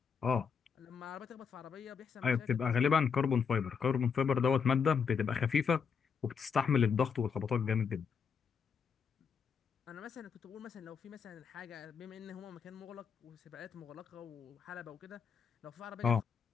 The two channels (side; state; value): right; quieter; 6.3 dB